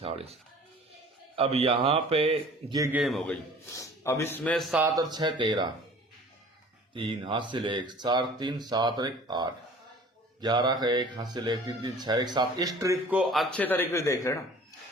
अब यहाँ पे ये गेम हो गई। अब इसमें 7 और 6 13, 3 हासिल 1, 4 3 7 और 1 8, 11 का 1 हासिल 1 3 3 6 1 7। इस ट्रिक को अच्छे तरीके से देख लेना।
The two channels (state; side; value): normal; both; correlation 0.47